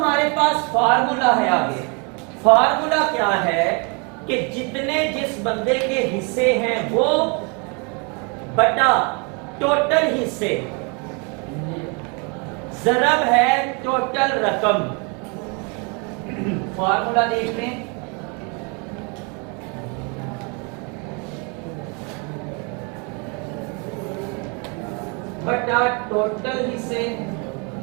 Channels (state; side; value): quieter; left; 33.3 dB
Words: पास फार्मूला है आगे। फार्मूला क्या है कि जितने जिस बंदे के हिस्से हैं वो बटा टोटल हिस्से ज़रब है टोटल रकम। फार्मूला देख लें, बटा टोटल हिस्से।